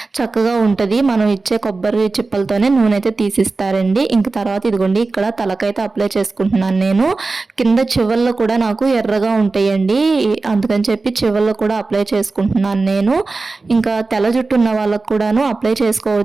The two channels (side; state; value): left; quieter; 3.7 dB